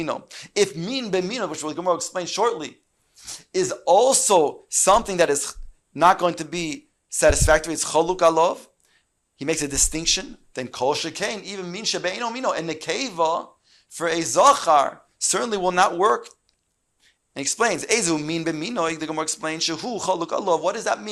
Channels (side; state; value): both; identical; correlation 1.00